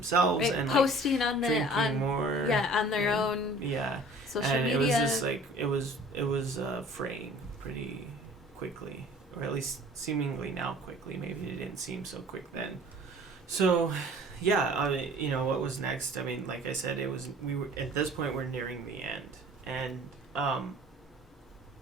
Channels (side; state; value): both; normal; correlation 0.48